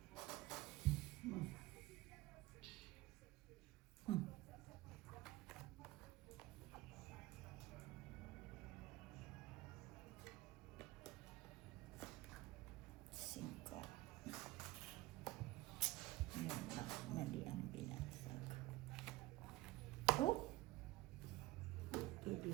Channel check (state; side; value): quieter; left; 18.8 dB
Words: Singka. Yun lang, mali ang binasag. Oh,